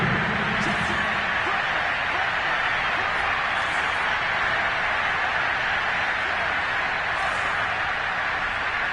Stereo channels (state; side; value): identical; both; correlation 1.00